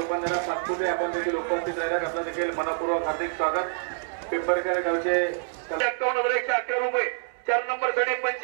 पाचपुते आपण देखील उपस्थित राहिल्यात. आपलं देखील मनपूर्वक हार्दिक स्वागत. पिंपरखेड गावचे 51,111 रुपये. 4 नंबर साठी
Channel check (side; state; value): left; silent; 60 dB below the other